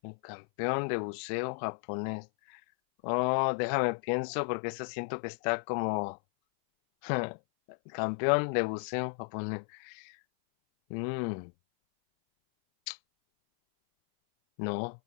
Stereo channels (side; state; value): right; silent; 55 dB below the other